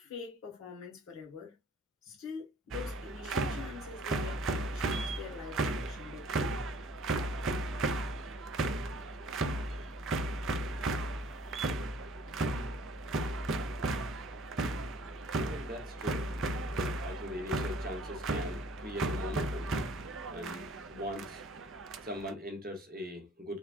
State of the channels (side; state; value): both; normal; correlation 0.55